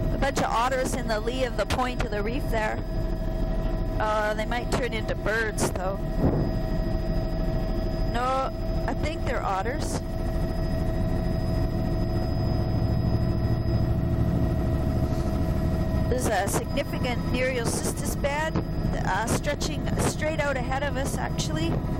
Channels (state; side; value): identical; both; correlation 1.00